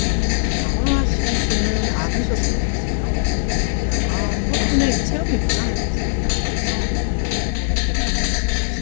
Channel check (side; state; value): right; silent; digital silence